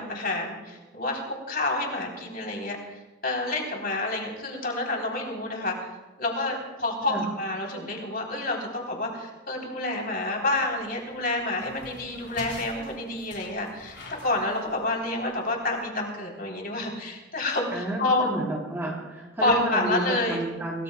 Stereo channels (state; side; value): normal; both; correlation -0.07